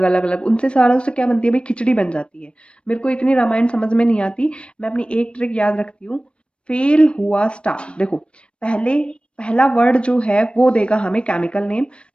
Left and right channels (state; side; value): late; right; 0.058 ms